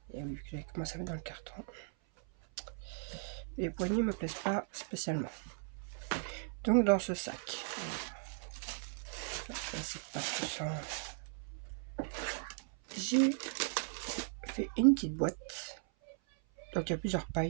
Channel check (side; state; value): left; silent; 53 dB below the other